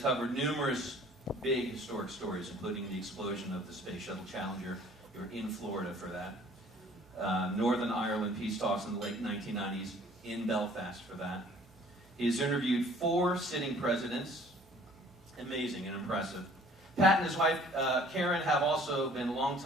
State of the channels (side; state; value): right; noise; hum, 28 dB below the sound